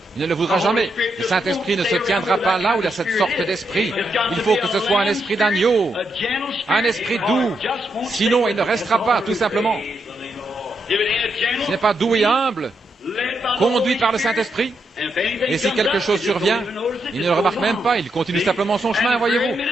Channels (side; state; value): both; normal; correlation 0.81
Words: Il ne le voudra jamais. Le Saint-Esprit ne se tiendra pas là où il y a cette sorte d'esprit. Il faut que ce soit un esprit d'agneau, un esprit doux. Sinon, il ne restera pas, tout simplement. Ce n'est pas doux et humble, conduit par le Saint-Esprit. Et si quelque chose survient, il ne le remarque même pas, il continue simplement son chemin, voyez-vous.